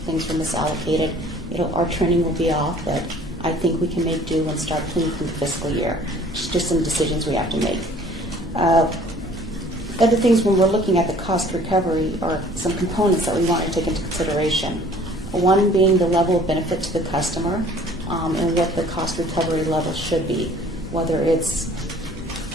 were misallocated, our trending will be off, but I think we can make do and start clean from the fiscal year. Just some decisions we have to make. Other things when we're looking at the cost recovery are some components that we want to take into consideration. One being the level of benefit to the customer and what the cost recovery level should be, whether it's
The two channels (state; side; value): normal; both; correlation 0.53